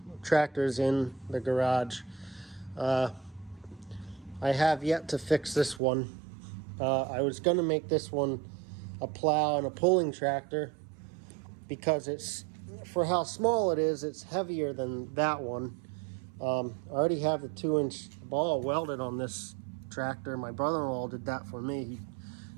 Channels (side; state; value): left; drops out; at 5.8 s